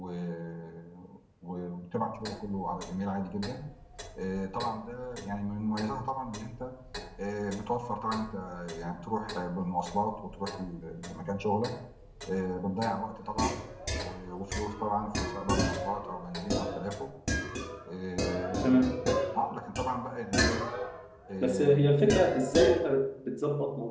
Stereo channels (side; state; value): both; identical; correlation 1.00